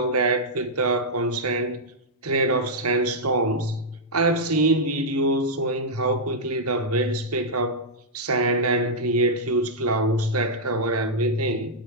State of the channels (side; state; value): both; normal; correlation -0.08